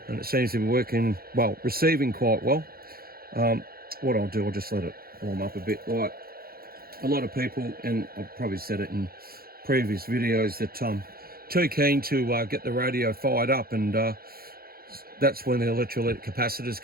and it seems to be working well, receiving quite well. What I'll do, I'll just let it warm up a bit. Like a lot of people, and I've probably said it in previous videos, that too keen to get the radio fired up, and that's when the electrolytic capacitors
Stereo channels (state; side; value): late; left; 0.44 ms